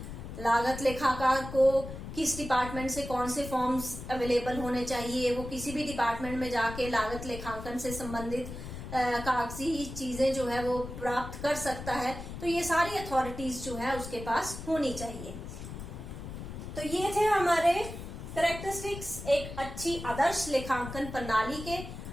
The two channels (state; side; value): noise; left; rumble, 10 dB below the sound